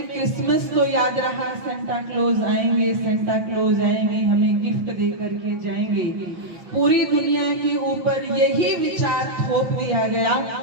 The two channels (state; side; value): late; left; 6.0 ms